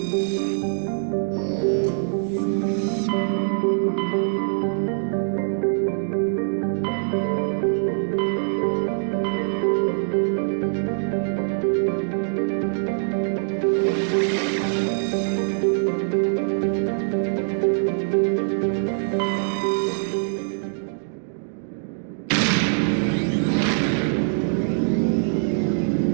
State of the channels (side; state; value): left; silent; digital silence